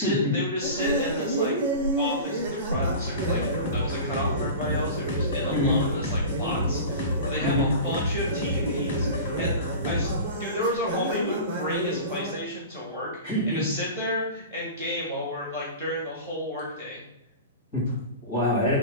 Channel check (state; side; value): inverted; both; correlation -0.33